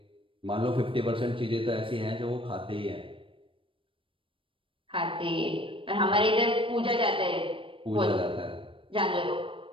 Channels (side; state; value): left; late; 0.25 ms